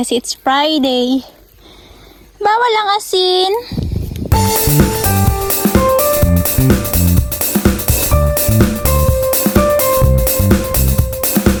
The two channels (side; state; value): both; identical; correlation 1.00